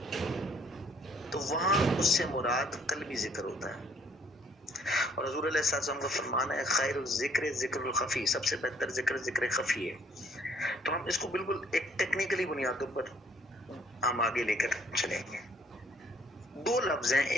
تو وہاں اس سے مراد قلبی ذکر ہوتا ہے. اور حضور علیہ السلام کا فرمان ہے خیر الذکر ذکر الخفی، سب سے بہتر ذکر ذکر خفی ہے. تو ہم اس کو بالکل ایک ٹیکنیکلی بنیادوں پر ہم آگے لے کر چلیں گے. دو لفظ ہیں،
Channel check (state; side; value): normal; both; correlation 0.62